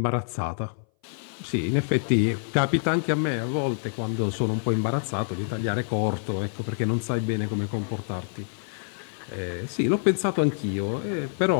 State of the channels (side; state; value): right; silent; 59 dB below the other